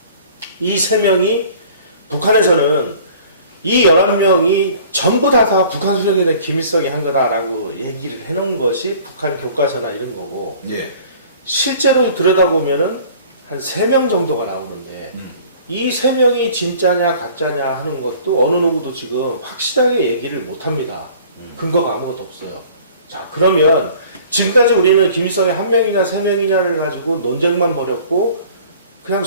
이 3명이 북한에서는 이 11명이 전부 다 북한 수령이 된 김일성이 한 거다라고 얘기를 해놓은 것이 북한 교과서나 이런 거고 예. 실제로 들여다보면은 한 3명 정도가 나오는데 이 3명이 진짜냐 가짜냐 하는 것도 어느 누구도 지금 확실하게 얘기를 못합니다. 근거가 아무것도 없어요. 자, 그러면 지금까지 우리는 김일성이 1명이냐 3명이냐를 가지고 논쟁만 벌였고 그냥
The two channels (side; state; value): both; inverted; correlation -0.49